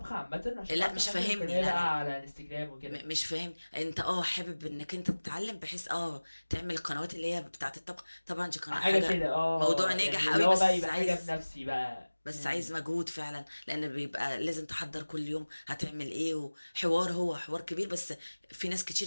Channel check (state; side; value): inverted; both; correlation -1.00